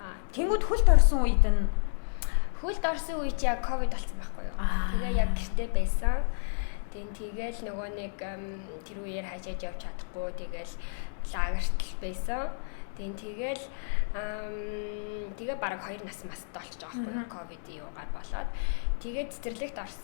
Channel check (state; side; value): silent; right; digital silence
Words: Тэнгүүд хөлд орсон үед нь чи яг ковид болсон байхгүй юу? Тэгээ яг гэртээ байсан. Тэгэл нөгөө нэг тэр үеэр хажээж явж чадахгүй тэгэл лагерт байсан. Тэгээ бараг 2 нас мастай болчих жоох байхгүй ковид юугаар болоод тэгээд цэцэрлэгт